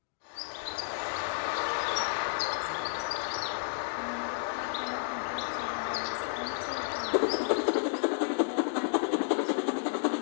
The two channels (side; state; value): right; silent; digital silence